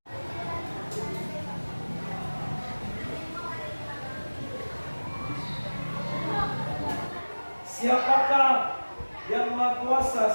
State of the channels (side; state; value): both; inverted; correlation -1.00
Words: Siapakah yang Maha